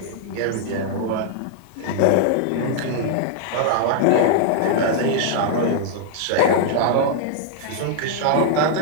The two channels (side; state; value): both; different; correlation -0.01